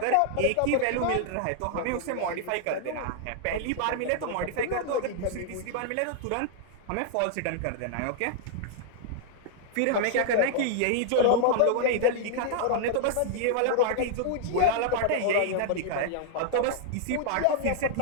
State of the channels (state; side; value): different; both; correlation -0.01